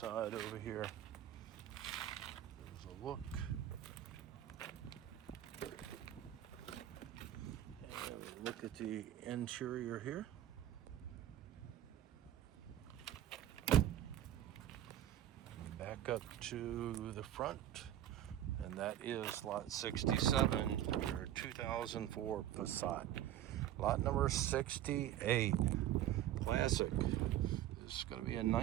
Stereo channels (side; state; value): left; quieter; 12.0 dB